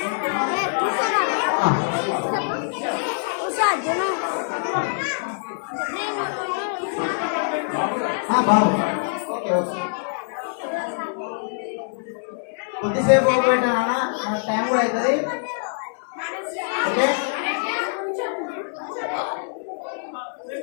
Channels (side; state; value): right; silent; 63 dB below the other